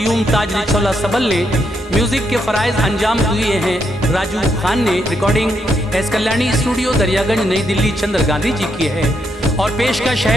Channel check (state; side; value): normal; both; correlation 0.78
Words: ताज रिछौला सबल ने। म्यूज़िक के फ़राइज़ अंजाम दिए हैं राजू खान ने। Recording S Kalyani studio Daryaganj नई दिल्ली चंद्र गांधी जी की है। और पेशकश